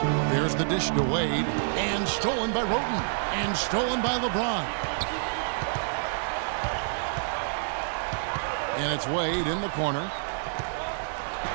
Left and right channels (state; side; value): silent; left; digital silence